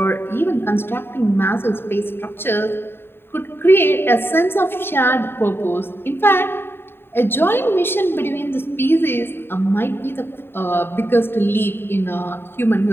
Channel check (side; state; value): right; late; 0.11 ms